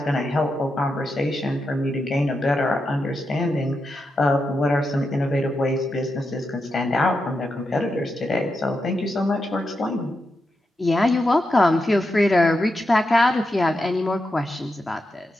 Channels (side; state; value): both; normal; correlation 0.87